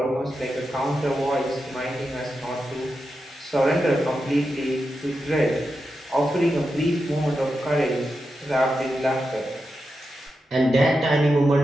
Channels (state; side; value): normal; both; correlation 0.89